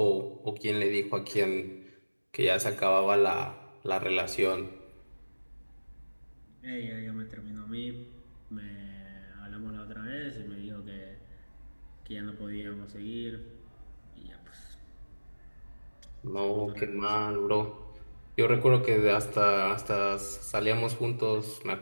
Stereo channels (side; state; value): both; inverted; correlation -1.00